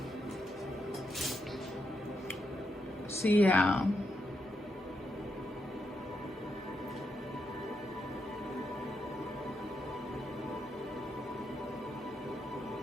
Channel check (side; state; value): both; normal; correlation 0.82